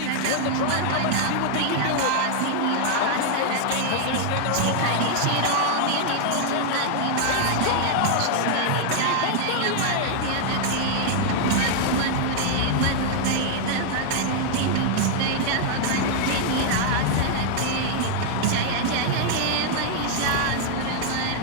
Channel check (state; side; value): different; both; correlation 0.00